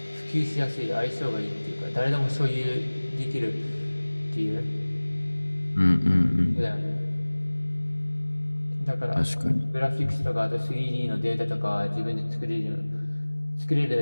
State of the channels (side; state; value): both; inverted; correlation -1.00